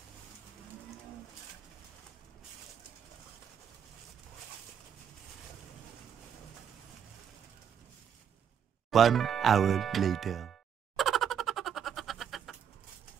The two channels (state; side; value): quieter; left; 8.4 dB